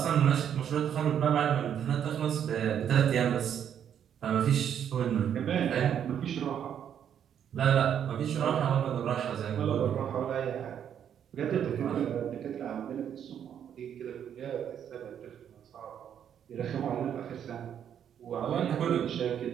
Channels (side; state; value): left; quieter; 9.1 dB